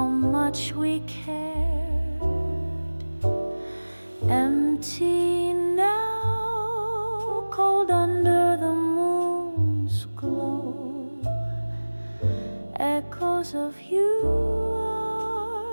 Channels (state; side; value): inverted; both; correlation -1.00